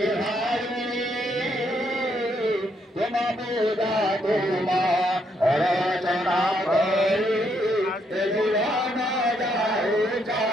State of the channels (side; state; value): both; normal; correlation 0.74